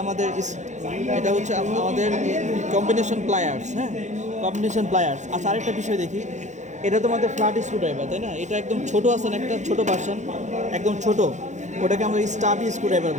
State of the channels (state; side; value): late; left; 0.34 ms